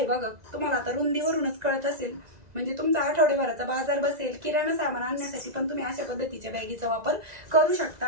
बघा. तुम्हाला आता रुंदीवरूनच कळत असेल, म्हणजे तुमचा आठवड्याभराचा बाजार बसेल. किराणा सामान आणण्यासाठी पण तुम्ही अशा पद्धतीच्या बॅगीचा वापर करू शकता.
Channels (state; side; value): late; left; 2.0 ms